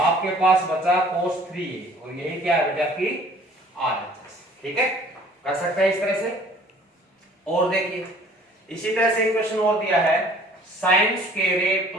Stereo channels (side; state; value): both; normal; correlation 0.53